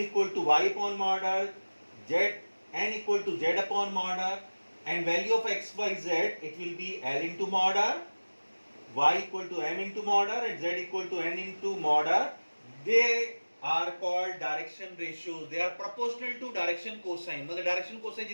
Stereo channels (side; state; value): both; inverted; correlation -1.00